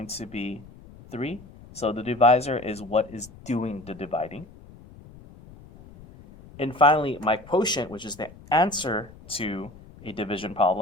to be 3. So the divisor is what is doing the dividing. And finally, my quotient, which is the answer to a division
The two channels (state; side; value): noise; left; rumble, 20 dB below the sound